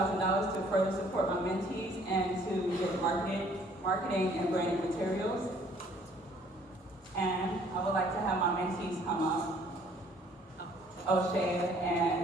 to further support my mentees and to get marketing and branding materials. And I would like to have my mentees come up, O'Shea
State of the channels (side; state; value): both; normal; correlation 0.59